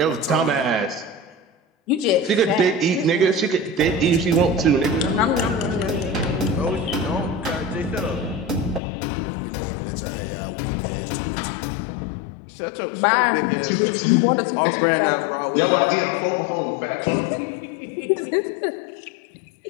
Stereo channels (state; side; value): drops out; right; at 8.8 s